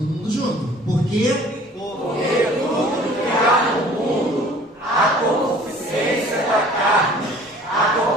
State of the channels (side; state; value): both; normal; correlation 0.50